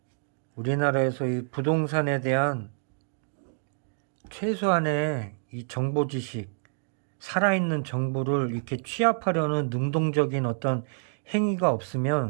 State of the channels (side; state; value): left; silent; digital silence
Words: 우리나라에서 이 부동산에 대한 최소한의 이 정보 지식, 살아있는 정보를 이렇게 취합하려는 능동적인 어떤 행위가